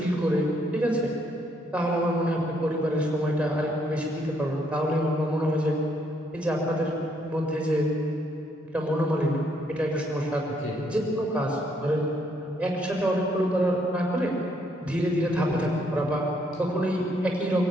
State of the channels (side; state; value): both; normal; correlation 0.71